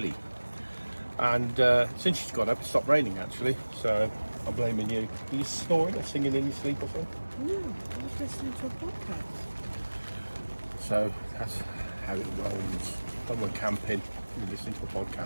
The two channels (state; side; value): inverted; both; correlation -1.00